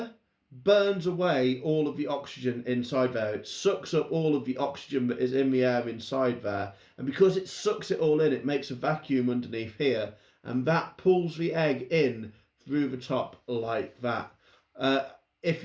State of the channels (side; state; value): both; identical; correlation 1.00